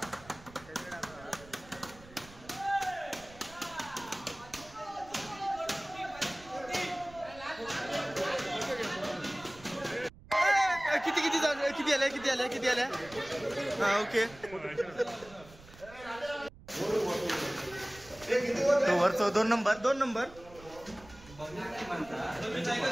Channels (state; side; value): noise; right; rumble, 21 dB below the sound